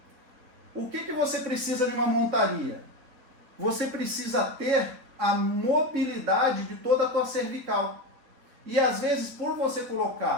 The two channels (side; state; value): left; late; 3.9 ms